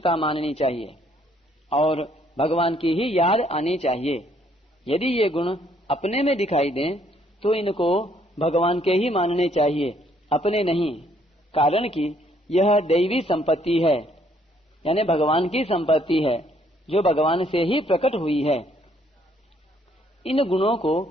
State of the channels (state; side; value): normal; both; correlation 0.67